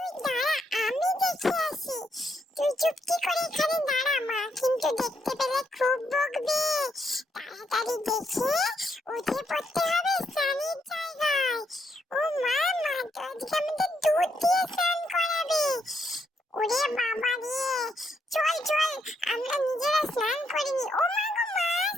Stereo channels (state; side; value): normal; both; correlation 0.77